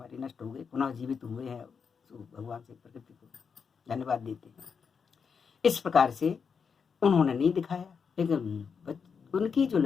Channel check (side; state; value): right; quieter; 6.1 dB